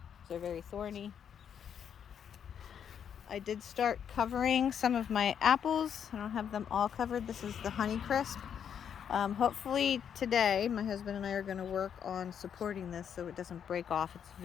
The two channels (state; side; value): quieter; right; 8.2 dB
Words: They're very thorny. I did start covering some of my apples. I don't have them all covered. This is the Honey Crisp. Hopefully today my husband and I are going to work on supporting this so it doesn't break off. It's